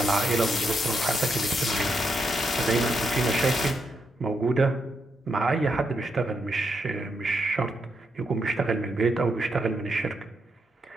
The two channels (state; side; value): normal; both; correlation 0.80